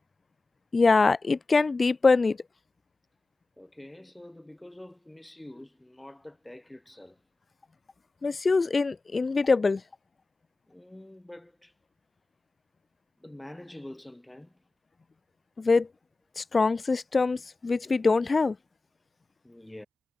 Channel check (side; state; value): right; quieter; 3.6 dB